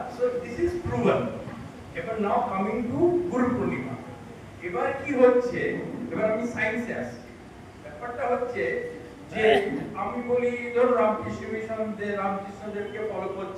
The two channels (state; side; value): identical; both; correlation 1.00